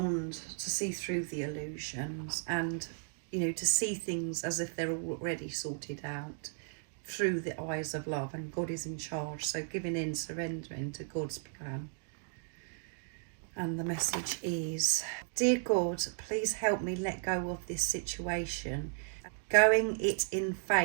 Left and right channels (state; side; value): silent; left; digital silence